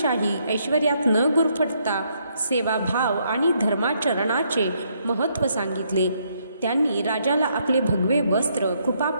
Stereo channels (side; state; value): both; inverted; correlation -0.73